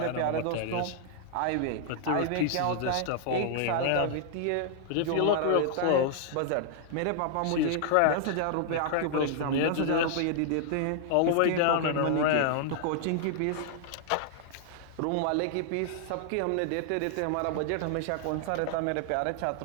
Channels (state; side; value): different; both; correlation -0.01